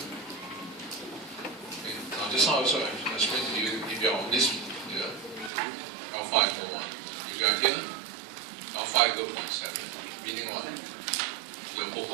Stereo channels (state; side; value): drops out; left; at 5.5 s